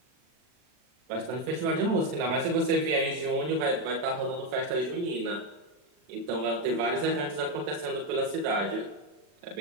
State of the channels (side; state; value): left; late; 40 ms